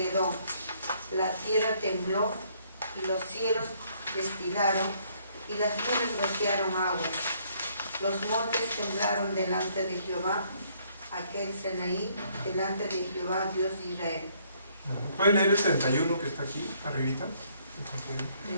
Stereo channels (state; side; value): inverted; both; correlation -0.66